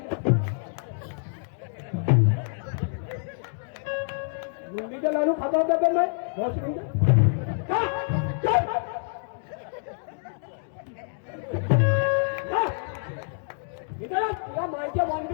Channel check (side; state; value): right; silent; digital silence